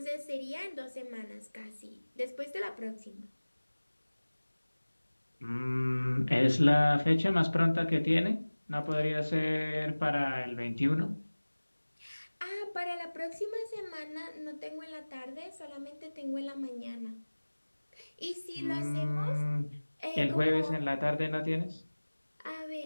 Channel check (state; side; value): inverted; both; correlation -1.00